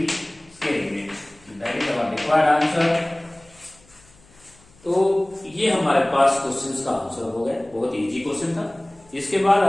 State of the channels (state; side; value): noise; left; hum, 28 dB below the sound